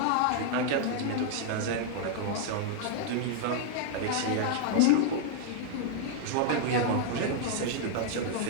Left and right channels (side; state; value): both; different; correlation -0.01